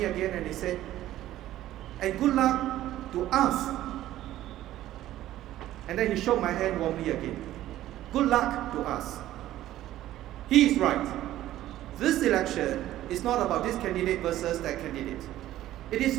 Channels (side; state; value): left; quieter; 13.9 dB